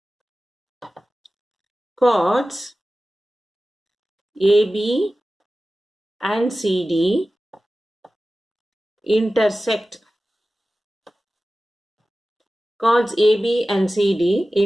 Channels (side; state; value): both; normal; correlation 0.96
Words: chords AB and CD intersect. Chords AB and CD